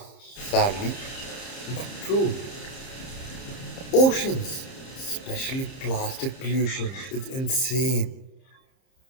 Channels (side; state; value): right; late; 30 ms